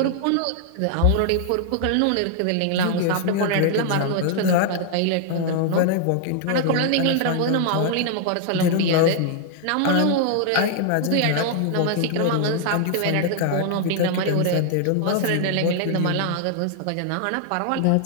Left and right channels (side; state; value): both; different; correlation 0.00